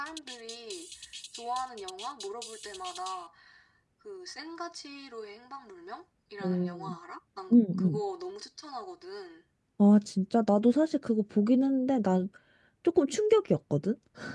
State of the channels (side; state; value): both; identical; correlation 1.00